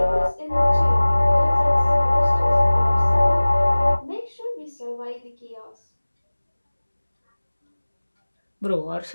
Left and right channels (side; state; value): both; inverted; correlation -1.00